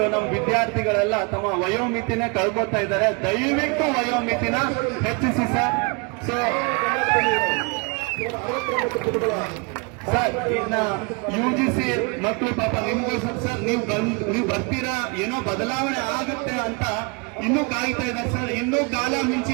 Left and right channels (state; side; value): quieter; left; 31.0 dB